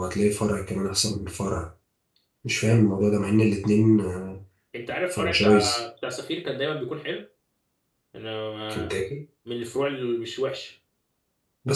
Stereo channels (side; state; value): both; identical; correlation 1.00